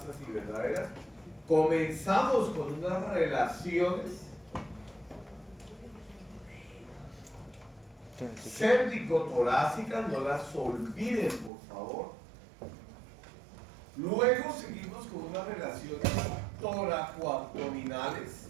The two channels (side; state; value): left; drops out; at 11.5 s